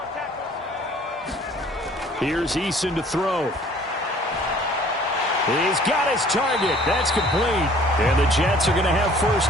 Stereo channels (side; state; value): both; normal; correlation 0.53